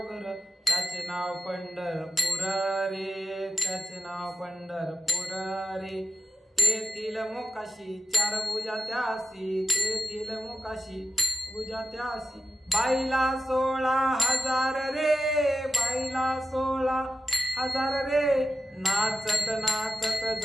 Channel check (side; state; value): both; normal; correlation 0.92